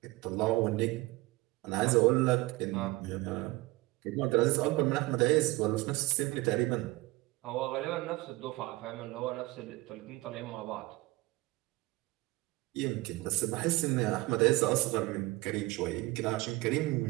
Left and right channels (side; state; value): left; quieter; 20.7 dB